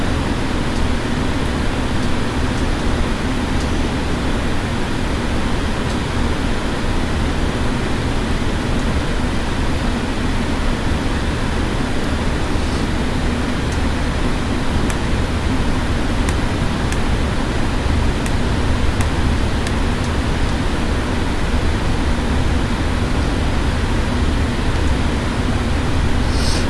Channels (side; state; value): both; identical; correlation 1.00